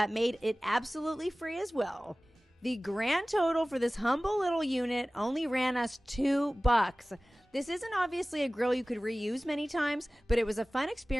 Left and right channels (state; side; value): normal; both; correlation 0.98